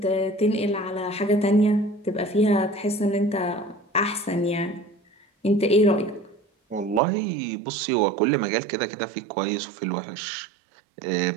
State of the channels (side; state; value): left; drops out; at 7.0 s